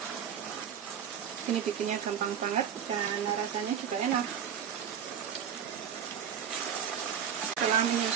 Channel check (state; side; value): quieter; left; 8.3 dB